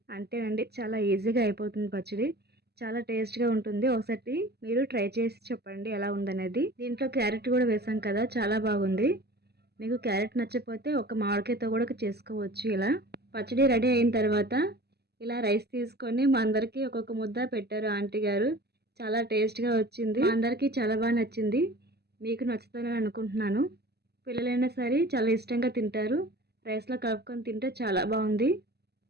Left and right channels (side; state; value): left; late; 0.47 ms